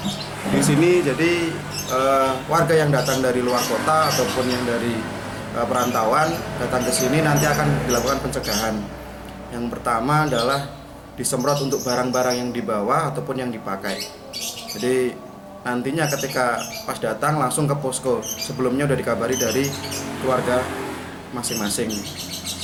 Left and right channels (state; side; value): identical; both; correlation 1.00